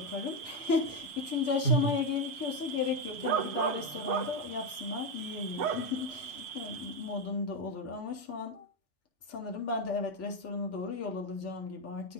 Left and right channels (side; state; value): left; late; 5.9 ms